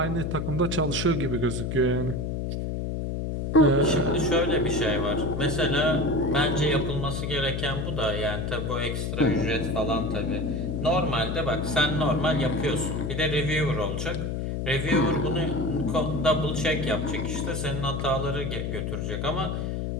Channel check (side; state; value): left; noise; hum, 2 dB below the sound